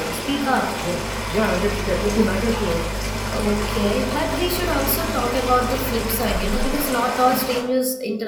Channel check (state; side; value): identical; both; correlation 1.00